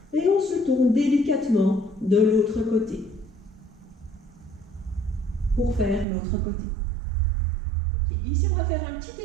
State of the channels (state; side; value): drops out; left; at 6.1 s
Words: et on se tourne délicatement de l'autre côté pour faire l'autre côté. Ici, on va faire un petit